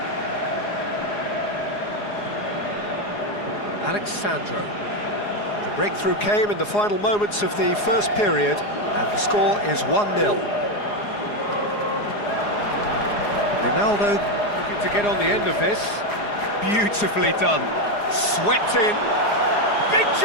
Alexandro. The breakthrough came in the final moments of the first period, and the score is 1-0. Ronaldo looking to get on the end of this. Beautifully done. Swept in. Big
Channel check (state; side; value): late; right; 4.8 ms